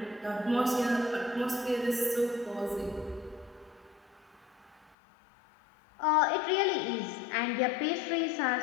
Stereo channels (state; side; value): drops out; right; at 5.0 s